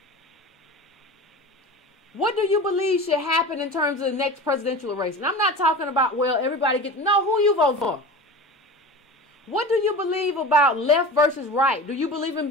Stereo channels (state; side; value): normal; both; correlation 0.33